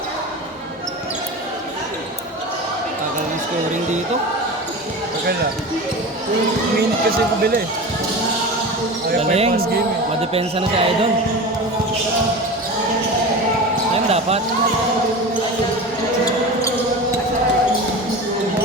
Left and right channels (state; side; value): normal; both; correlation 0.30